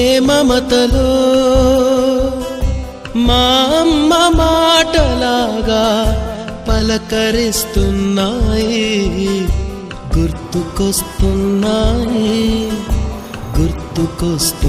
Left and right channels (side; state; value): both; identical; correlation 1.00